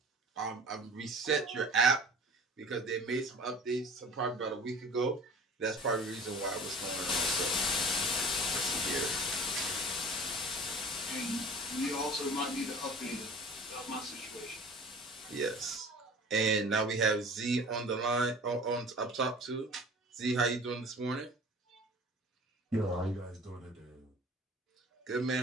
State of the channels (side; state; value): both; normal; correlation 0.43